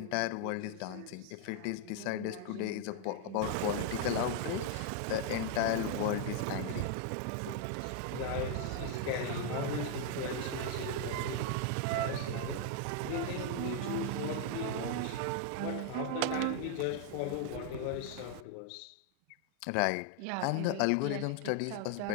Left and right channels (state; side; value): different; both; correlation 0.00